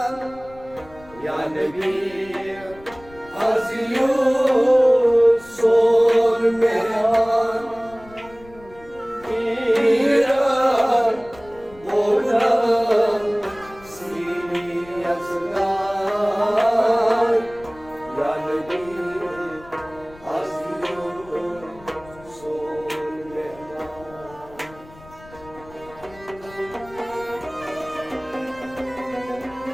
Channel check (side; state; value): left; noise; rumble, 22 dB below the sound